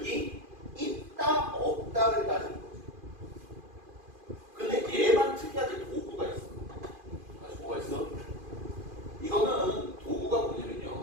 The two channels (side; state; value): left; late; 2.5 ms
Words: 있다 없다를 따지는 거죠. 근데 얘만 특이하게 도구가 있어. 다시 뭐가 있어? 이거는 도구가